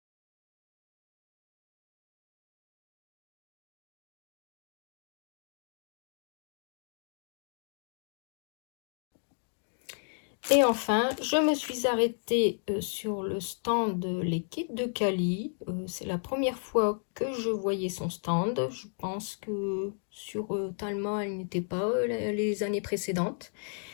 Et enfin, je me suis arrêtée sur le stand Les Kits de Cali. C'est la première fois que je voyais son stand. Je pense que sur Talma, elle n'était pas les années précédentes.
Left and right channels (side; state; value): right; silent; digital silence